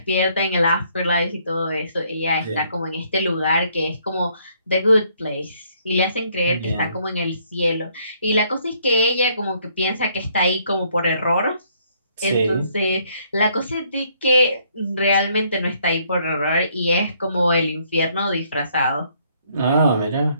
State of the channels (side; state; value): both; inverted; correlation -0.67